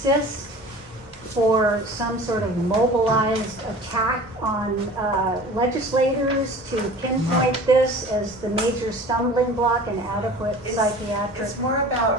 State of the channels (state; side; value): normal; both; correlation 0.41